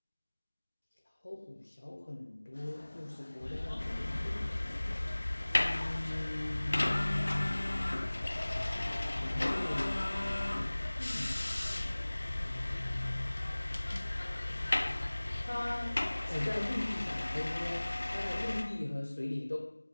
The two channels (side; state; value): both; inverted; correlation -1.00